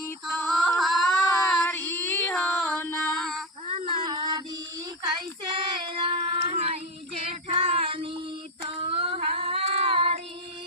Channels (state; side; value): normal; both; correlation 0.14